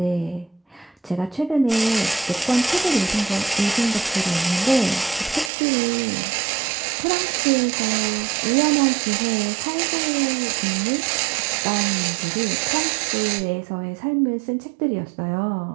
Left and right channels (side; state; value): left; drops out; at 5.5 s